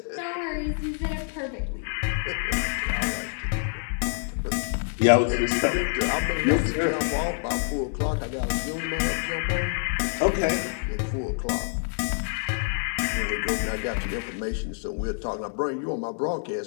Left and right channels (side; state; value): right; silent; 57 dB below the other